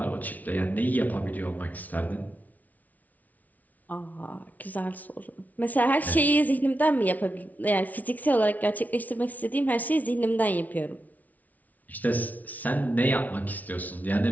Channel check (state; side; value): late; right; 0.075 ms